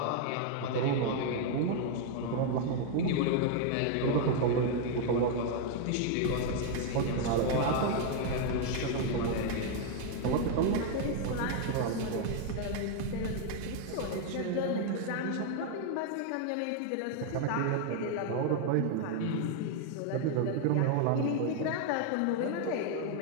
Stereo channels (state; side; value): different; both; correlation 0.00